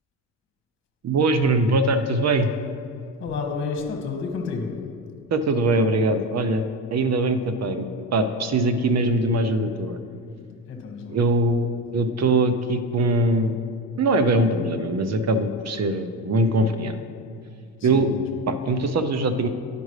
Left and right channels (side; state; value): both; normal; correlation 0.20